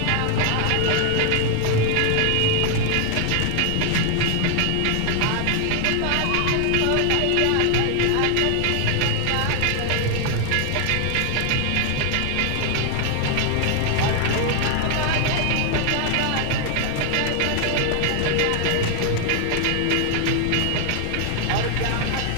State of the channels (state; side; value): different; both; correlation 0.00